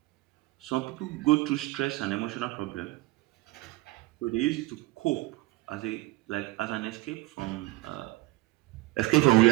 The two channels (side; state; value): left; quieter; 19.5 dB